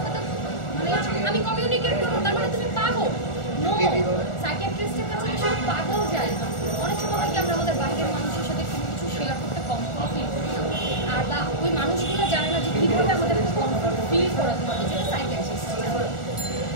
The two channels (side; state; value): right; late; 1.4 ms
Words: মানে আমি কমিউনিকেট করবো তার মানে তুমি পাগল। নো, সাইকিয়াট্রিস্টের কাছে আসলে পাগল যায় না। অনেক সময় কি আমরা আমাদের বাইরের মানুষের সাথে কোনো কিছু শেয়ার করতে কমফোর্ট ফিল করি আর বা ওই মানুষগুলো জানে না যে কীভাবে আমাদের কমফোর্ট ফিল করাতে হবে, যেটা সাইকিয়াট্রিস্ট